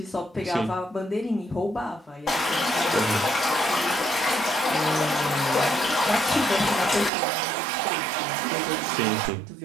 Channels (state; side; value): drops out; left; at 7.1 s